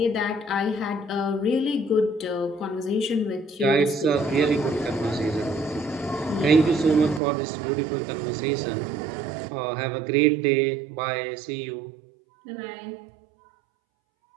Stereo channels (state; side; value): drops out; left; at 7.2 s